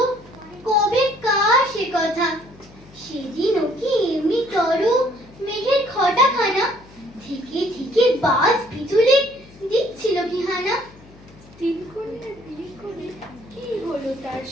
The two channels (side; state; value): left; noise; hum, 24 dB below the sound